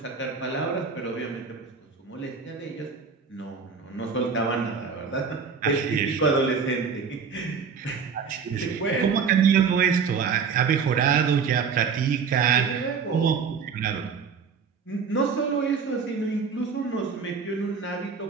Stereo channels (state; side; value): quieter; left; 5.8 dB